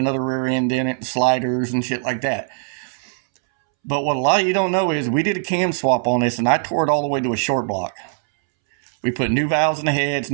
rear end in it and sliders and shit like that. But what a lot of you don't know is we did a cam swap on this, and I tore it all the way to a short block. We put new valves in the heads,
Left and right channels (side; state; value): left; silent; 65 dB below the other